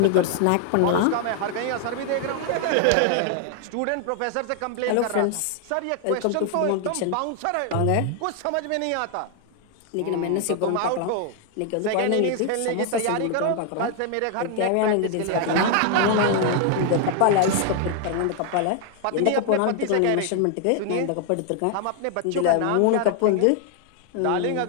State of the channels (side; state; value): both; different; correlation 0.00